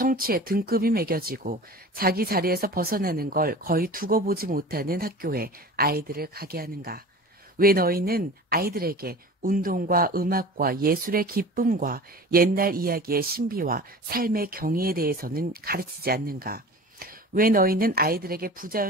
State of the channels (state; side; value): normal; both; correlation 0.37